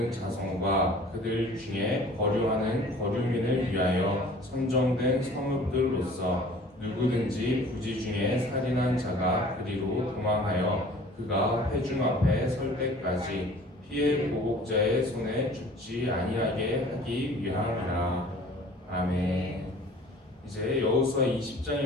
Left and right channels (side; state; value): both; normal; correlation 0.48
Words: 자손과 그들 중에 거류하는 거류민을 위하여 선정된 성읍들로서 누구든지 부지 중에 살인한 자가 그리로 도망하여 그가 회중 앞에 설 때까지 피해 보복자의 손에 죽지 아니하게 하기 위함이라. 아멘. 이제 여호수아